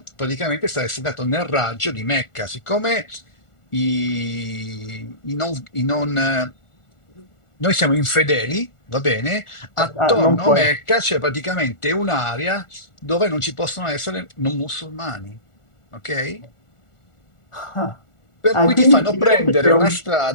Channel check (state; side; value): late; right; 1.4 ms